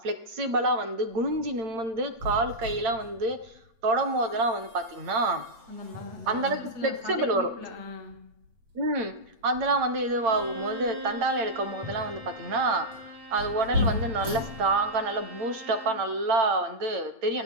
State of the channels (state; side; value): late; left; 8.7 ms